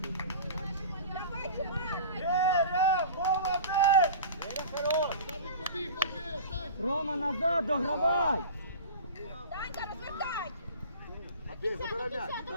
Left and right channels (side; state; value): both; inverted; correlation -0.36